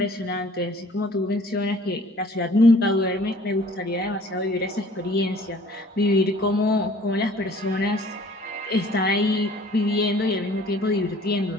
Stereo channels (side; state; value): both; normal; correlation 0.53